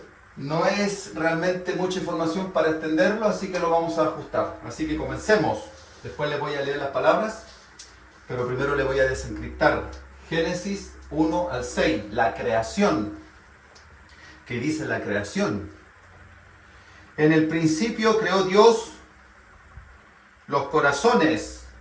no es realmente mucha información para extenderlo, así que lo vamos a ajustar. Así que comencemos. Después les voy a leer las palabras, pero primero les voy a desencriptar. Génesis 1 al 6, la creación. ¿Qué dice la creación? En el principio creó Dios los corazones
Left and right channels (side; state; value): both; identical; correlation 1.00